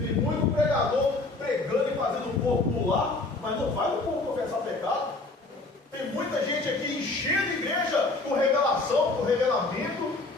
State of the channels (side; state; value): right; quieter; 3.2 dB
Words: muito pregador pregando e fazendo o povo pular, mas não faz o povo confessar pecado. Tem muita gente aqui enchendo a igreja com revelação, com revelamento,